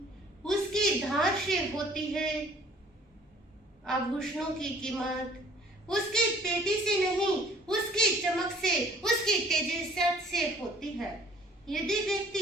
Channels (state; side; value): normal; both; correlation 0.55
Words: उसकी धार से होती है। आभूषणों की कीमत उसकी पेटी से नहीं, उसकी चमक से, उसकी तेजस्वी से होती है। यदि